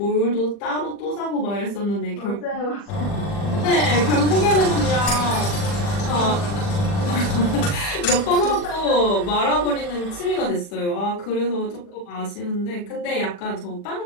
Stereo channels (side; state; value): right; late; 40 ms